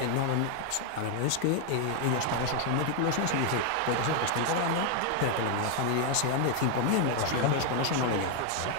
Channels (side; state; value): both; different; correlation 0.00